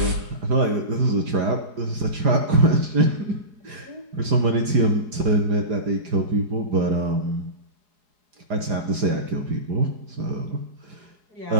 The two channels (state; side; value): late; left; 4.9 ms